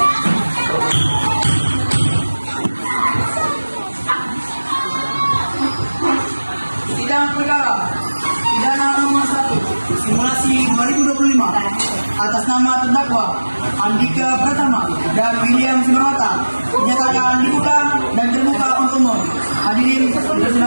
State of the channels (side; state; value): both; inverted; correlation -1.00